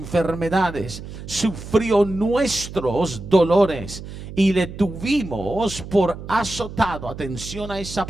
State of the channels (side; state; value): right; noise; hum, 12 dB below the sound